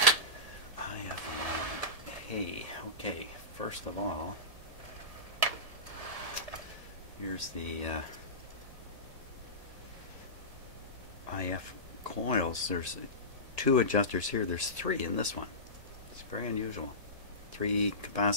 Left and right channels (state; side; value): late; left; 1.8 ms